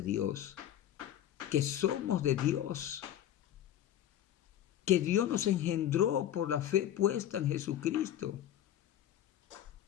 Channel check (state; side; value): quieter; right; 11.3 dB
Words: que somos de Dios, que Dios nos engendró por la fe puesta en Jesucristo.